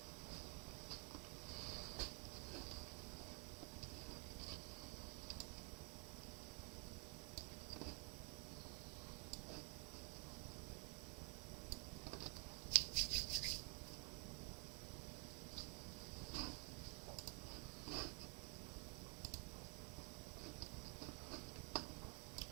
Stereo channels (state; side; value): quieter; left; 31.1 dB